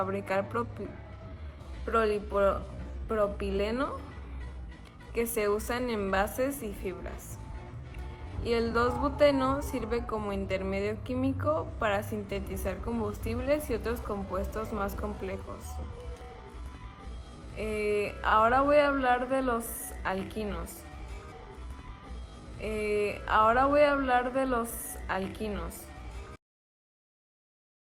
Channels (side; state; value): both; identical; correlation 1.00